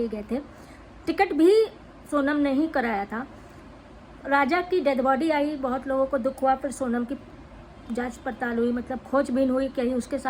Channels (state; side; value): identical; both; correlation 1.00